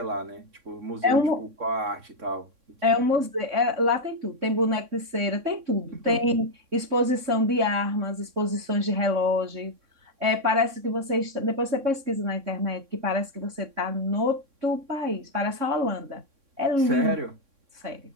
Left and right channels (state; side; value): late; left; 3.6 ms